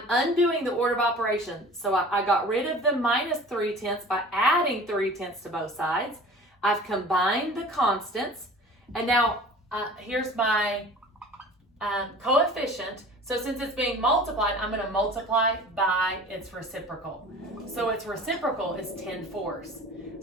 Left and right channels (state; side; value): normal; both; correlation 0.43